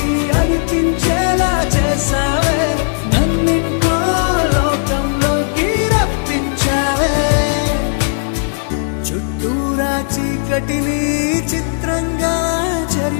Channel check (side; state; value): right; silent; digital silence